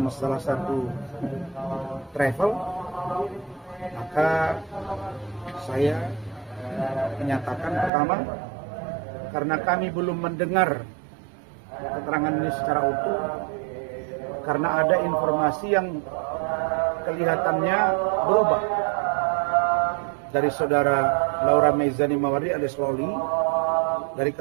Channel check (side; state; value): left; drops out; at 7.9 s